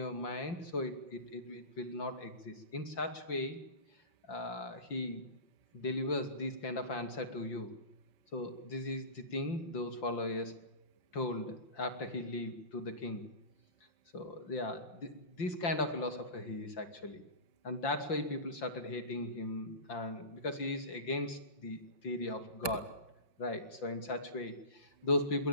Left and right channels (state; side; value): late; right; 5.8 ms